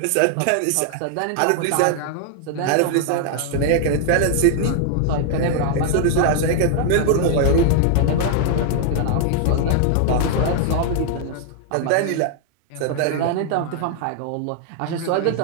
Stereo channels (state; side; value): different; both; correlation 0.00